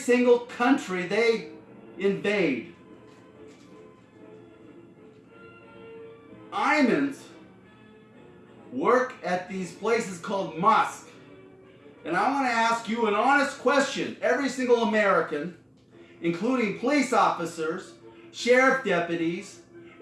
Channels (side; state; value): both; identical; correlation 1.00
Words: country they invade. Imams work at these places called mosques. And I want to ask you an honest question. Every single American, including police officers, sheriff deputies,